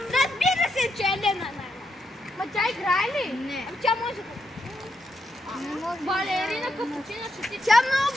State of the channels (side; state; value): both; normal; correlation 0.81